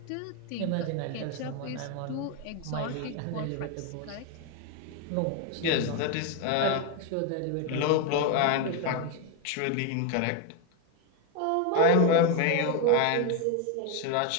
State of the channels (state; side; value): different; both; correlation 0.01